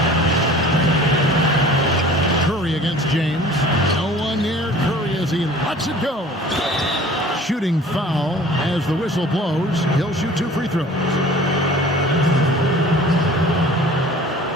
Curry against James. No one near Curry as he lets it go. Shooting foul as the whistle blows. He'll shoot 2 free throws.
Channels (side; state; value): both; normal; correlation 0.46